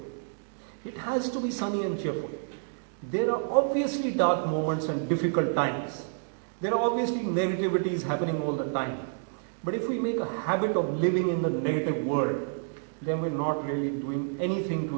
It has to be sunny and cheerful. There are obviously dark moments and difficult times. There are obviously negativities happening all the time. But if we make a habit of living in the negative world, then we're not really doing anything to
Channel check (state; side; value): silent; left; digital silence